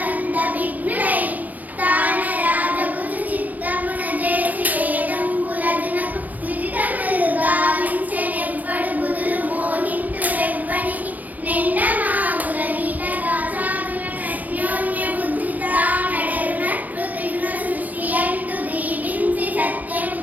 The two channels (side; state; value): left; late; 0.080 ms